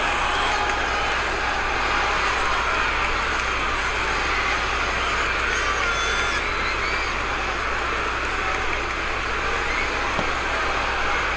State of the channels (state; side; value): identical; both; correlation 1.00